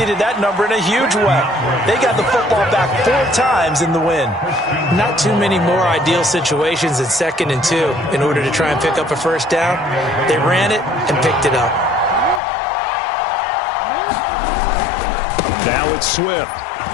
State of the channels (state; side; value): drops out; right; at 12.4 s